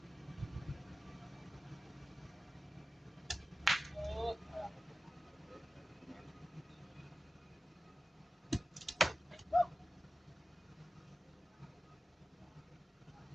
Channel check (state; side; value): normal; both; correlation 0.94